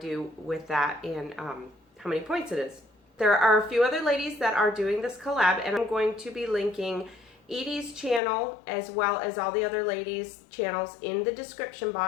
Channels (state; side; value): drops out; right; at 8.2 s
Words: with that and how many points it is. There are a few other ladies that are doing this collab, and I'm going to be linking Edye's channel as well as all the other ladies' channels in the description